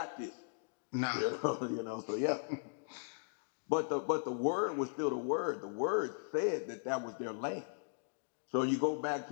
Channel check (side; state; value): right; silent; digital silence